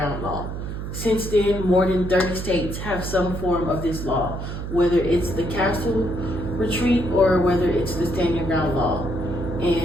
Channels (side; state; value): right; noise; hum, 6 dB below the sound